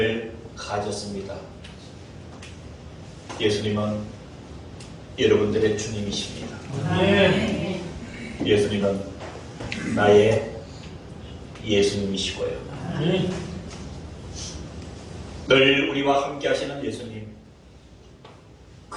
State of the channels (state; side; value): identical; both; correlation 1.00